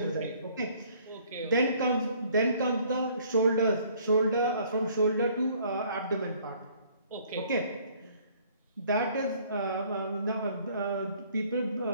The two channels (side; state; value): both; inverted; correlation -0.59